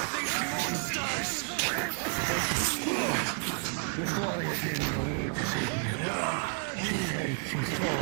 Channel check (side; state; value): left; quieter; 39.4 dB